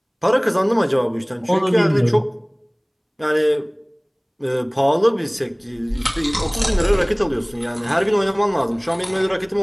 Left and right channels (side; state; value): both; identical; correlation 1.00